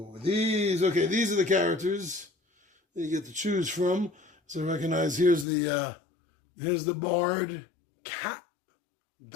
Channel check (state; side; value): drops out; right; at 5.5 s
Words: these are the characters that you get to choose from. So recognize here's the bard, cat,